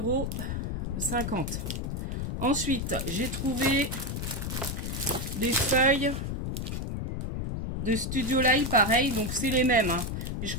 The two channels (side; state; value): left; noise; rumble, 3 dB below the sound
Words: €. Ensuite, j'ai trouvé des feuilles de Studio Light, pareil. Donc, c'est les mêmes. Hein. Et je